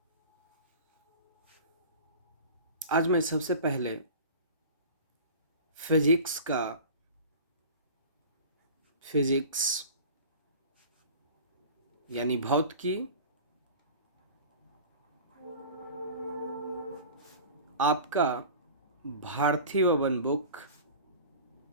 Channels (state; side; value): inverted; both; correlation -0.38